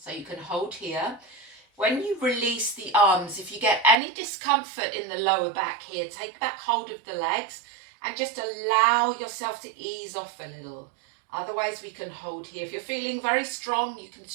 So you can hold here. When you release the arms, if you get any discomfort in the lower back here, take back hold of the legs and just allow yourself to ease off a little. Otherwise, we can hold here. If you're feeling very strong, you can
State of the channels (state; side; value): drops out; left; at 4.0 s